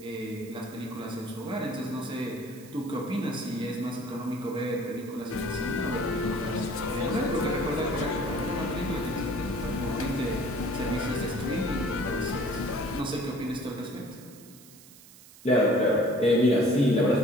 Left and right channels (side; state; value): right; noise; hiss, 21 dB below the sound